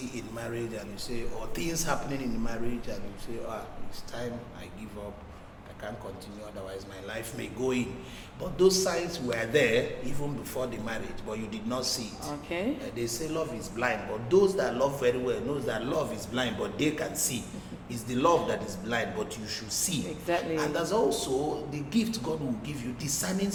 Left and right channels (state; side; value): identical; both; correlation 1.00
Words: in marriage, and you say, or things happening in marriage, and you say, it's time I give up, I can't continue, otherwise my life may go in. But those signs were there even before the marriage, but you did not see it. They say love is blind, but those that love very well knows that love is blind, but they can see. It's the love that is blind, but you should see. Exactly. And there's also the gift God will give you, discerning